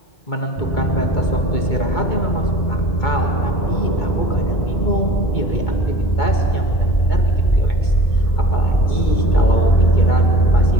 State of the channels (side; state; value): right; late; 2.2 ms